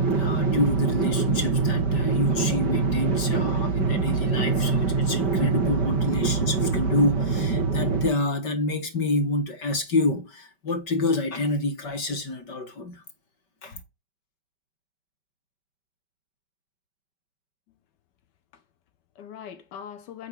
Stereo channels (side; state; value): right; late; 5.2 ms